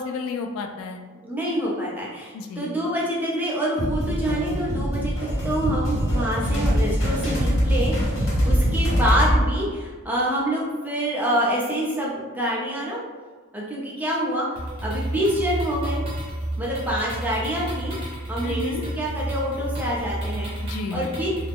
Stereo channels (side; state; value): both; normal; correlation 0.58